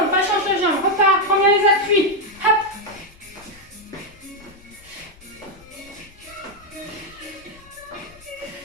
pas change de jambe, repars, prends bien les appuis. Hop.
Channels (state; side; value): noise; left; rumble, 25 dB below the sound